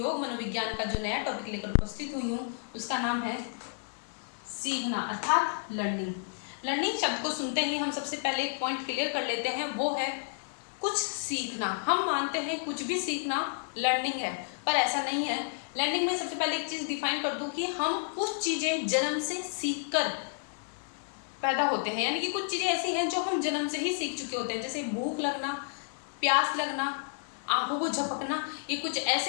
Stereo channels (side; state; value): right; silent; digital silence